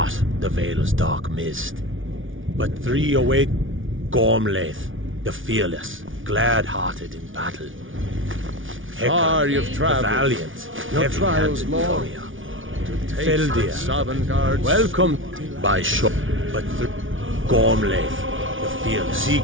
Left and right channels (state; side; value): late; left; 0.57 ms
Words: the Vale's dark mist. But 3 await Gormlaith, the fearless, glad-hearted in battle. Far you've the traveled, valiant, your trials heavy-handed long. warrior. Feldir, welcome by Shaw, but Gormlaith, the fearless. Seek